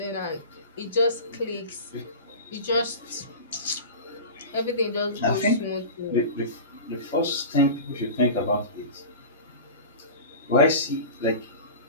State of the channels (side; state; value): both; inverted; correlation -0.32